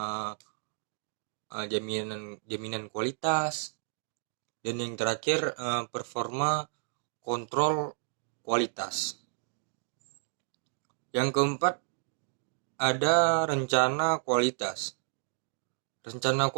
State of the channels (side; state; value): left; silent; digital silence